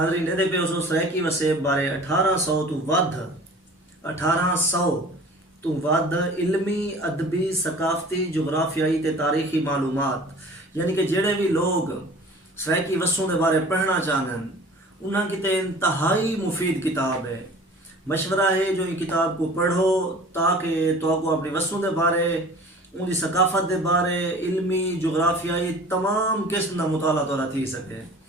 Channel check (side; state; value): both; normal; correlation 0.44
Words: دے پہ اسو سرائکی وسیب بارے 1800 تو ود علمی ادبی ثقافتی جغرافیائی تے تاریخی معلومات یعنی کہ جڑے بھی لوگ سرائکی وسوں دے بارے پڑھنا چاہن انہاں کی تے انتہائی مفید کتاب ہے. مشورہ ہے جو یہ کتاب کو پڑھو تاکہ تو کو اپنی وسوں دے بارے ان دی ثقافت دے بارے علمی جغرافیائی تمام قسم دا مطالعہ توڑا تھی سکے.